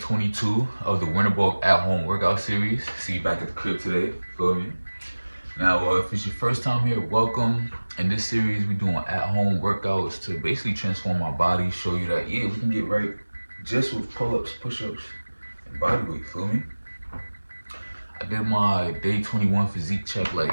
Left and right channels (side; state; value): both; inverted; correlation -1.00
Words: of the Winter Bulk at Home Workout Series. See you back at the crib today, feel me? Now, if it's your first time here, welcome. In this series, we're doing at home workouts to basically transform our body, show you that, yeah, we can get right just with pull ups, push ups, and body weight, feel me? I did my day 21 physique check like